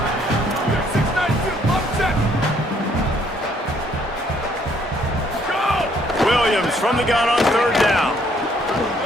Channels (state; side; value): normal; both; correlation 0.66